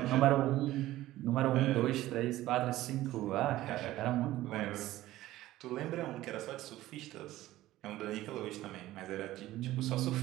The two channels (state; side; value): quieter; left; 15.6 dB